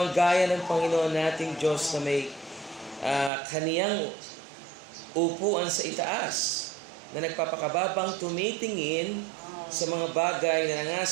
gaya ng Panginoon nating Diyos na may kaniyang upuan sa itaas, na nagpapakababang tumitingin sa mga bagay na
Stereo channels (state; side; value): drops out; left; at 3.3 s